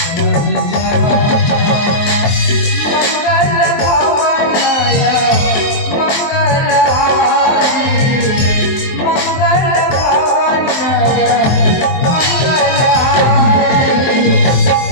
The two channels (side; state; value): right; late; 23 ms